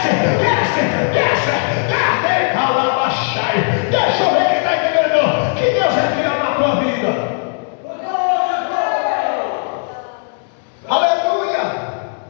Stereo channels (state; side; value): silent; right; 65 dB below the other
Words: desce, desce, desce, calabachai. Deixa eu ver quem está entendendo que Deus é fiel na tua vida. Aleluia!